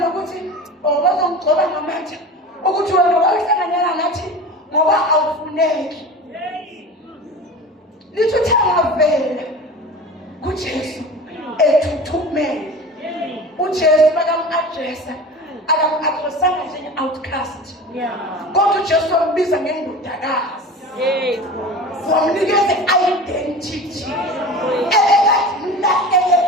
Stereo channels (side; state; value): both; normal; correlation 0.34